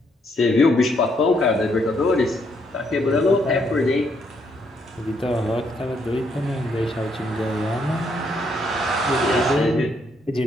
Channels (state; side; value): normal; both; correlation 0.73